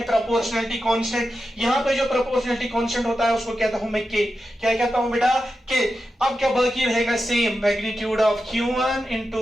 प्रोपोर्शनैलिटी कांस्टेंट। यहाँ पे जो प्रोपोर्शनैलिटी कांस्टेंट होता है उसको कहता हूं मैं के। क्या कहता हूं बेटा? के। अब क्या बाकी रहेगा? Same magnitude of Q1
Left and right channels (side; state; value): both; normal; correlation 0.90